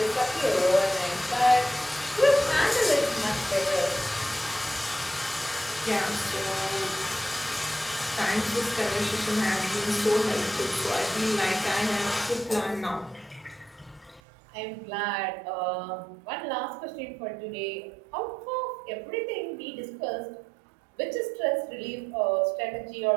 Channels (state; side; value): drops out; left; at 14.2 s